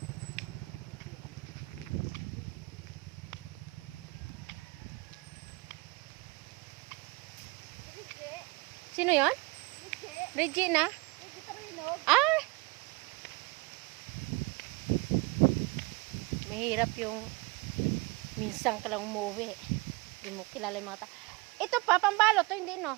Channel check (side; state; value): left; quieter; 24.8 dB